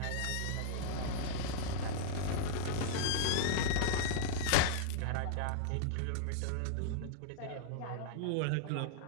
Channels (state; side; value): different; both; correlation -0.01